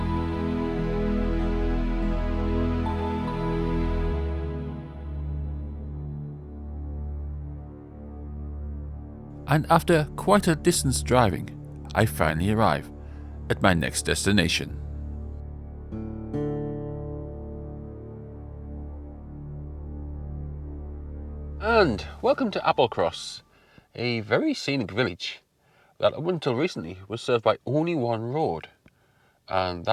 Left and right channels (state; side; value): identical; both; correlation 1.00